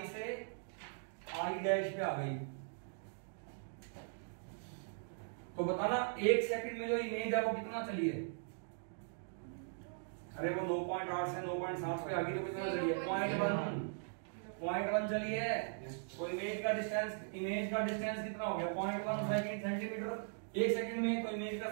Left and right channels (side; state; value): left; silent; digital silence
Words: से आई डैश पे आ गई। तो बताना 1 सेकंड में जो इमेज है वो कितना चली है? अरे वो 9.8 से 9.7 पे आ गई तो कितना चली है? 0.1 चली है। तो इमेज का डिस्टेंस कितना हो गया? 0.1 सेंटीमीटर 1 सेकंड में। तो इमेज का